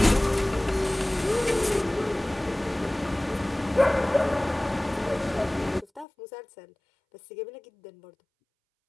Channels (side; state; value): right; drops out; at 6.1 s